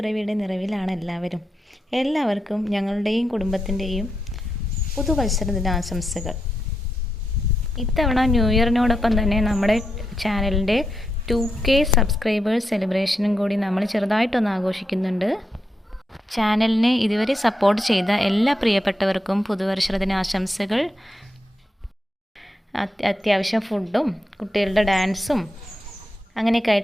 നിറവിലാണ് എല്ലാവർക്കും ഞങ്ങളുടെയും കുടുംബത്തിൻ്റെയും പുതുവത്സര ദിനാശംസകൾ. ഇത്തവണ ന്യൂ ഇയറിനോടൊപ്പം തന്നെ നമ്മുടെ ചാനലിൻ്റെ 2K സബ്സ്ക്രൈബേഴ്സ് സെലിബ്രേഷനും കൂടി നമ്മൾ ചെറുതായിട്ടൊന്ന് ആഘോഷിക്കുന്നുണ്ട്. ചാനലിനെ ഇതുവരെ സപ്പോർട്ട് ചെയ്ത എല്ലാ പ്രിയപ്പെട്ടവർക്കും പുതുവർഷ ദിനാശംസകൾ. അത്യാവശ്യം ഫുഡും കുട്ടികളുടെ ഡാൻസും അങ്ങനെയൊക്കെ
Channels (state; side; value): normal; both; correlation 0.85